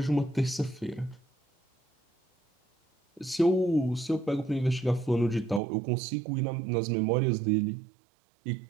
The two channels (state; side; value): drops out; left; at 5.6 s